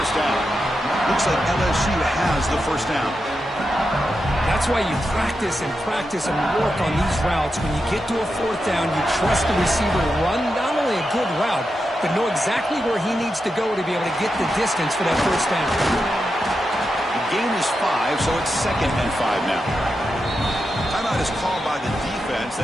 down. Looks like LSU has the 1st down. That's why you practice and work on these routes. When you get to a 4th down, you trust the receiver to run not only a good route, but know exactly where he needs to go to be able to get the distance for that 1st down. The gain is 5, so it's 2nd and 5 now. Timeout is called by the defense.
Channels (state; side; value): normal; both; correlation 0.88